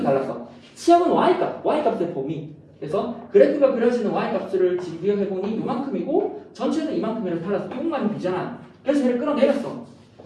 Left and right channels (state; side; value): identical; both; correlation 1.00